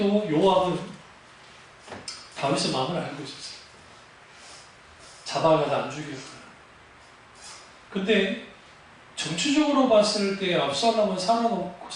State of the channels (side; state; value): both; identical; correlation 1.00